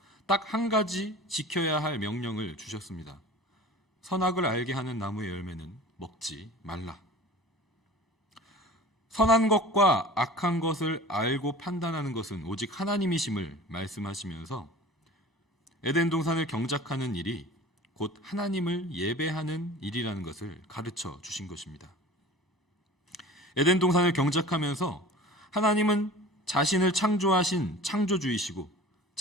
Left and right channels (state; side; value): normal; both; correlation 0.40